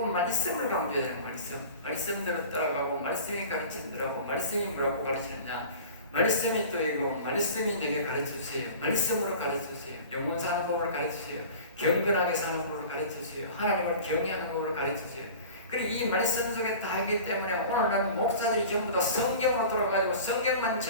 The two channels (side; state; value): both; inverted; correlation -0.39